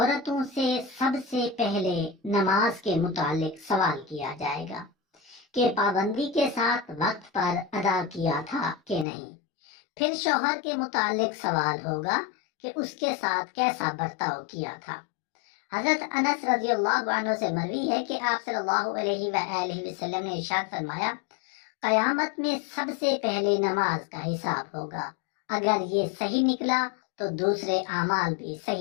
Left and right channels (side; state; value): right; drops out; at 9.1 s